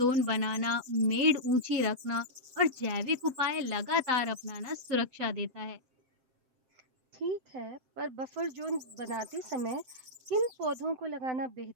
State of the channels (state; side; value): late; left; 7.9 ms